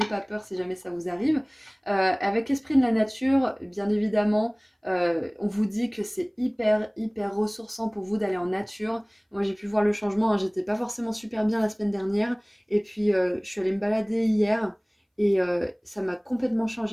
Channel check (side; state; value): both; identical; correlation 1.00